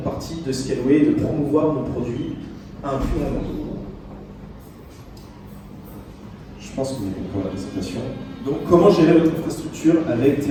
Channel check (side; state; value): both; identical; correlation 1.00